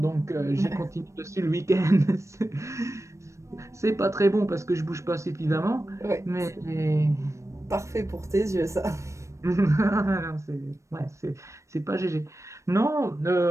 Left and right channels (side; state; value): left; late; 0.15 ms